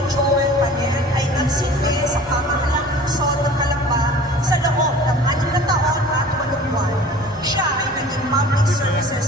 Joel Paner ay nagsilbi sa pamahalaang lungsod ng Calamba sa loob ng 6 na taon at 8 buwan. Siya ay naging Public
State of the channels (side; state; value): both; normal; correlation 0.44